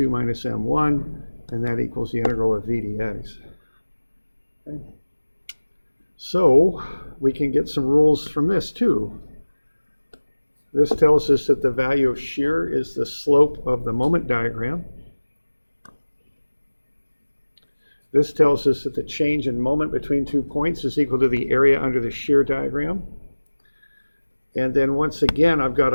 minus m1, and that equals the integral of v dx. Okay. So we can get some rules from this too. This tells us that the value of shear is the slope of the moment diagram. This tells us that the change in moment between 2 points is equal to the area under the shear diagram. And then once again, I've got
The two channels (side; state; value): both; inverted; correlation -1.00